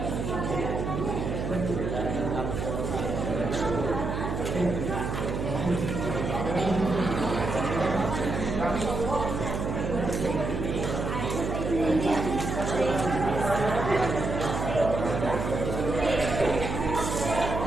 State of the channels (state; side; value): noise; right; hum, 3 dB below the sound